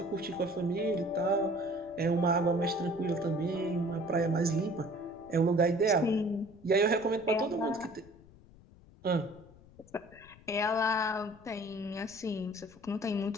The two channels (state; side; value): noise; left; rumble, 23 dB below the sound